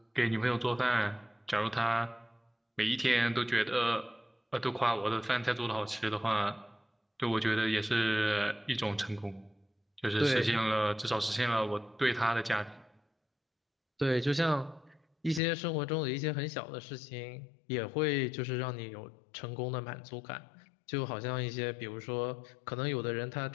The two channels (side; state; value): right; drops out; at 15.4 s